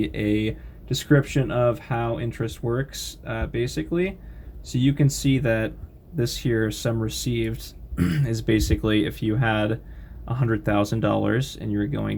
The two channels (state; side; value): identical; both; correlation 1.00